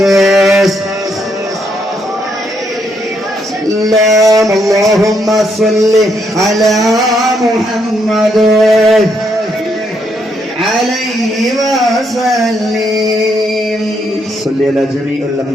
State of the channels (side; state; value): both; normal; correlation 0.75